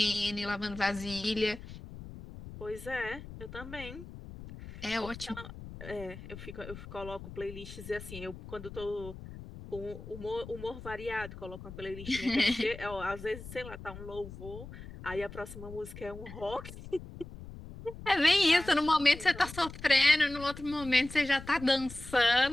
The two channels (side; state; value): left; noise; rumble, 13 dB below the sound